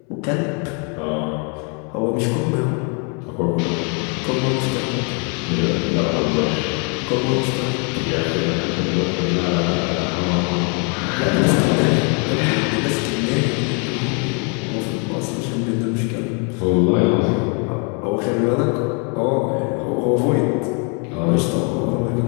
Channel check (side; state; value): right; quieter; 37.1 dB